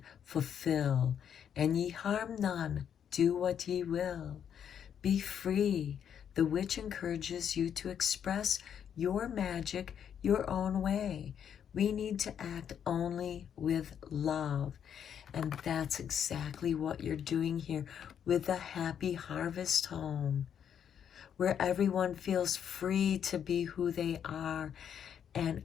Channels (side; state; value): right; quieter; 8.6 dB